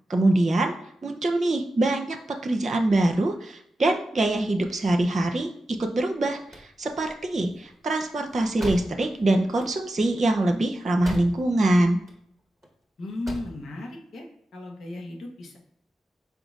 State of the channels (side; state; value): both; normal; correlation 0.92